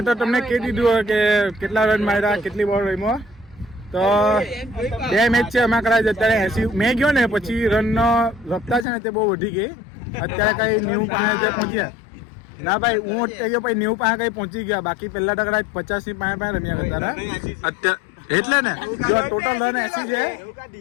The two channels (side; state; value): right; drops out; at 8.8 s